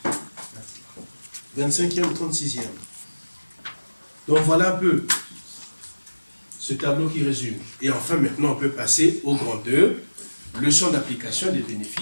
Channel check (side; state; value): both; inverted; correlation -1.00